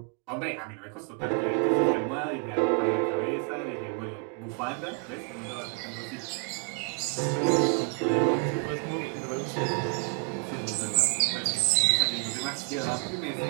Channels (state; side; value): quieter; left; 33.6 dB